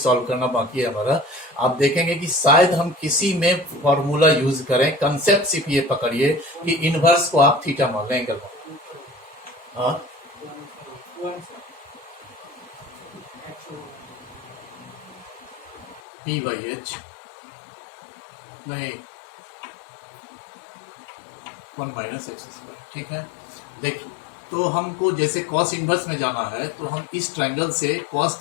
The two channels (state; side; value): drops out; right; at 16.0 s